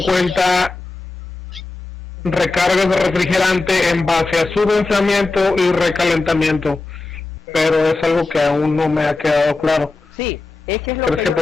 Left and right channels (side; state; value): right; quieter; 3.5 dB